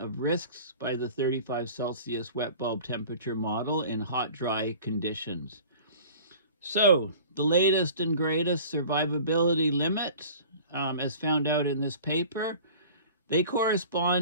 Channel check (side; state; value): both; inverted; correlation -0.44